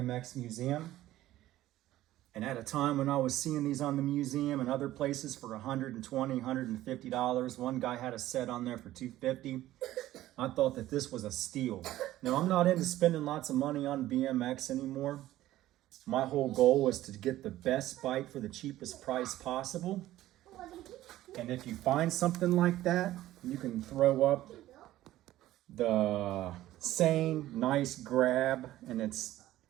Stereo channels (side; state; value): left; quieter; 14.8 dB